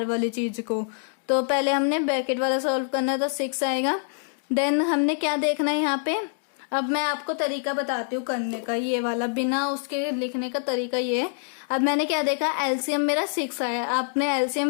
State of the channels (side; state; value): right; silent; digital silence